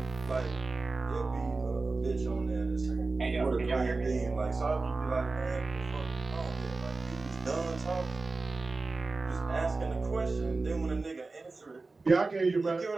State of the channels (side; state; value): left; quieter; 3.6 dB